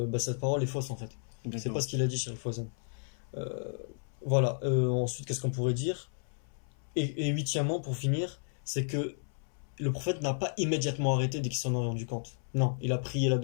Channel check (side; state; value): right; silent; 56 dB below the other